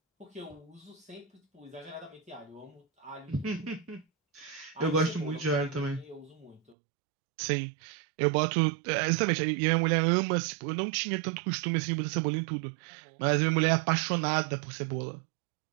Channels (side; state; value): left; drops out; at 6.8 s